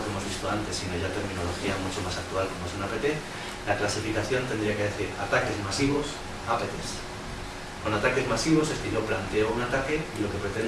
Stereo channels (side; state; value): both; identical; correlation 1.00